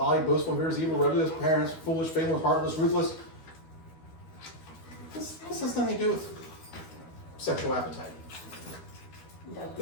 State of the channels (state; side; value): late; right; 12 ms